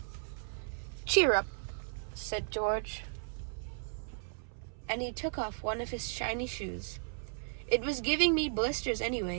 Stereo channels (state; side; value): silent; left; 54 dB below the other